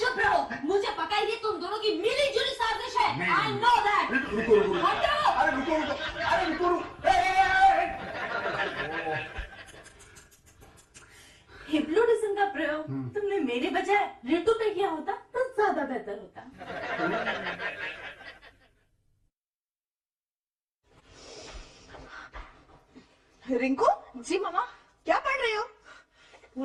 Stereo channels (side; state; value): both; identical; correlation 1.00